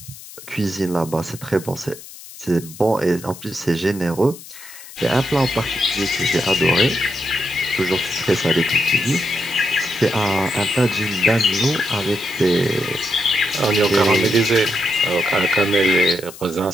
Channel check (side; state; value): left; noise; hiss, 16 dB below the sound